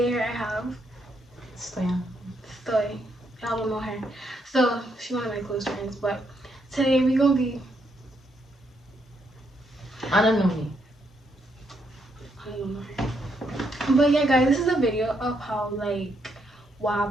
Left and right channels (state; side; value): normal; both; correlation 0.76